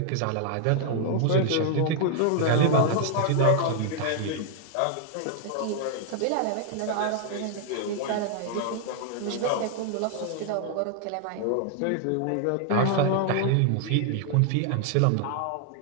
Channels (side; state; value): both; different; correlation 0.00